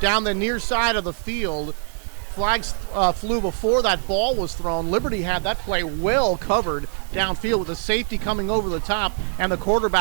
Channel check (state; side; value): silent; left; digital silence